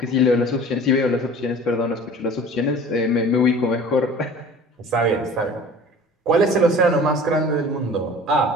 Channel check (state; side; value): normal; both; correlation 0.43